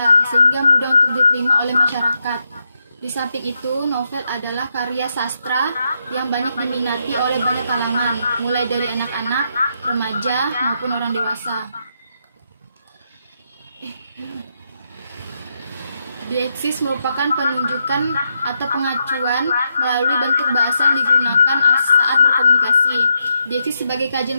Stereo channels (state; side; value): inverted; both; correlation -0.81